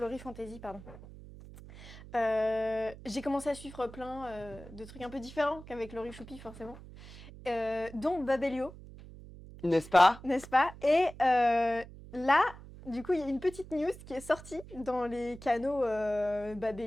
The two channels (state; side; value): noise; right; hum, 16 dB below the sound